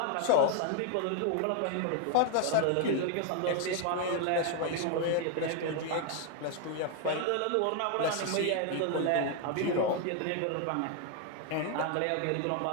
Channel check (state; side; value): different; both; correlation 0.00